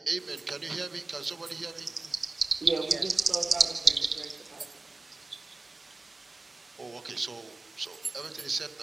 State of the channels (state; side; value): quieter; left; 3.3 dB